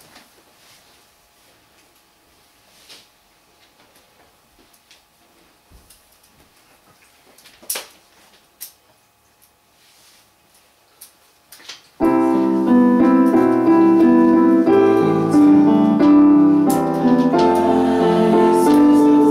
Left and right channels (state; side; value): identical; both; correlation 1.00